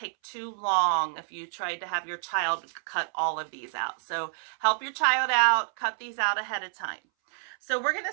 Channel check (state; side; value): silent; left; 59 dB below the other